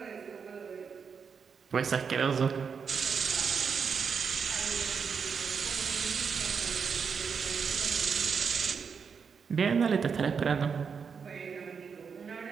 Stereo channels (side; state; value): left; quieter; 6.1 dB